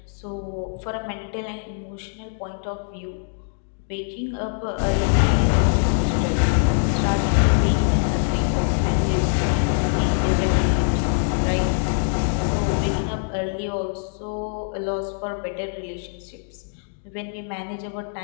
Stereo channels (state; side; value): silent; right; digital silence